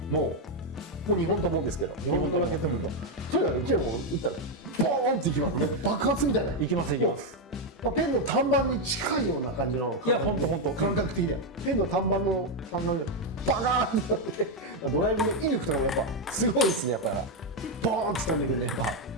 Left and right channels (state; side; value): normal; both; correlation 0.03